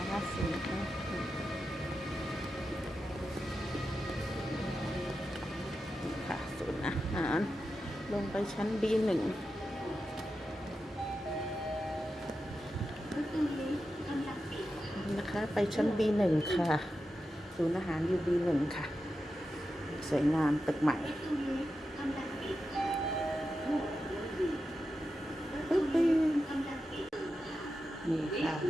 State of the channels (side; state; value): both; normal; correlation 0.90